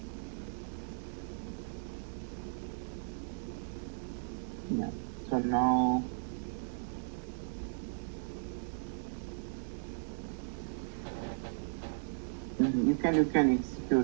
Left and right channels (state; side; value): silent; left; digital silence